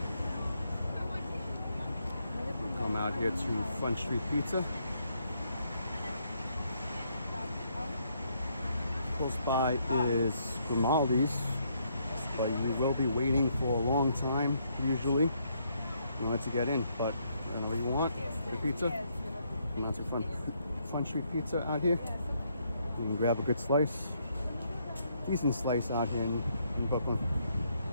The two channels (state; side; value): inverted; both; correlation -0.73